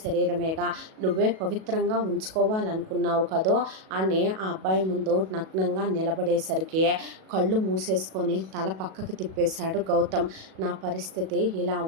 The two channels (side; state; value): left; late; 37 ms